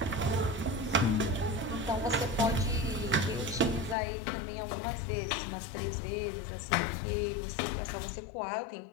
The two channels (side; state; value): right; drops out; at 4.0 s